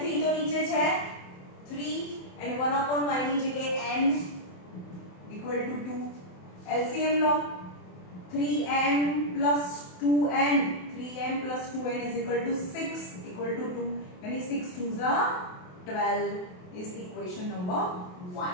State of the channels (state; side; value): late; right; 28 ms